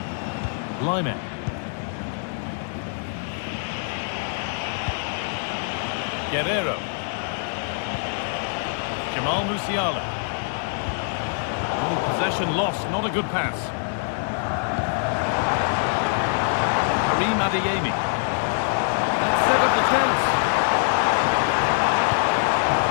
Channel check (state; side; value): silent; right; digital silence